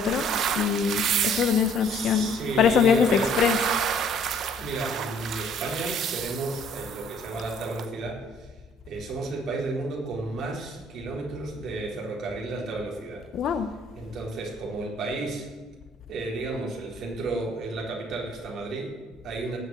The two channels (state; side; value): normal; both; correlation 0.59